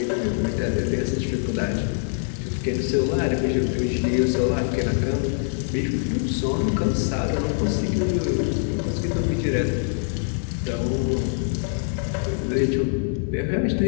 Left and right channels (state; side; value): silent; right; digital silence